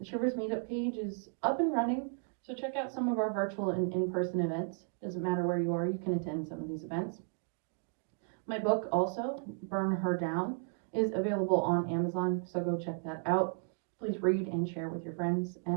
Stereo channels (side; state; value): left; silent; 55 dB below the other